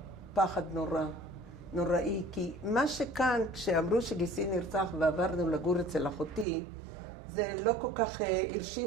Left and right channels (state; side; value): drops out; left; at 6.5 s